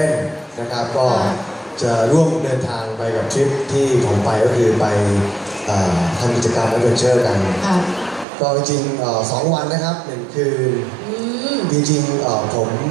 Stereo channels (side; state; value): left; drops out; at 8.2 s